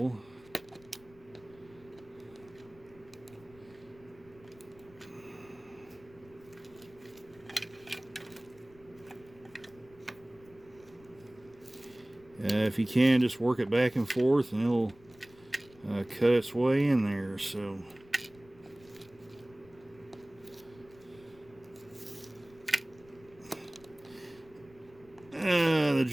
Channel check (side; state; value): left; noise; rumble, 25 dB below the sound